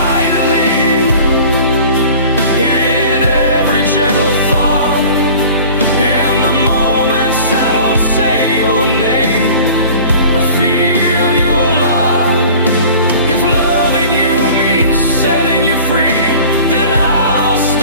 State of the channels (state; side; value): inverted; both; correlation -0.44